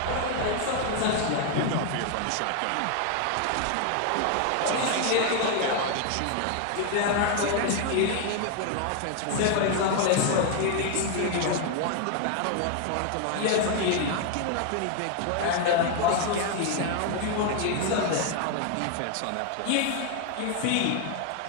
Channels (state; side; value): different; both; correlation 0.00